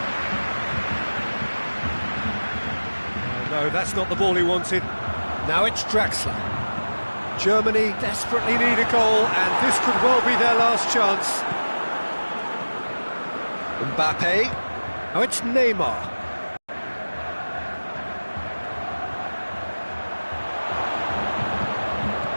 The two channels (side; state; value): both; inverted; correlation -1.00